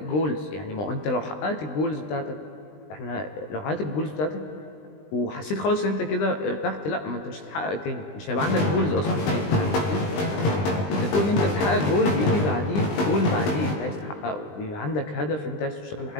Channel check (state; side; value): late; right; 20 ms